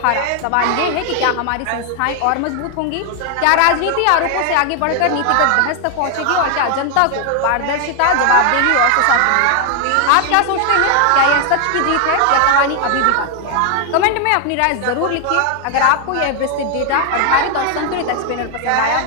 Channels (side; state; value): both; different; correlation 0.00